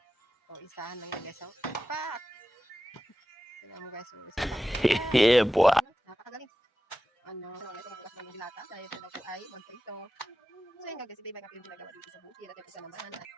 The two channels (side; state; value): both; normal; correlation 0.93